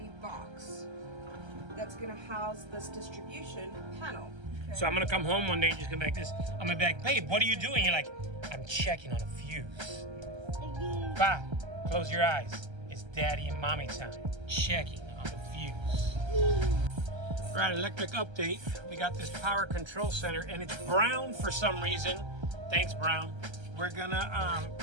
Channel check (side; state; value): left; late; 1.3 ms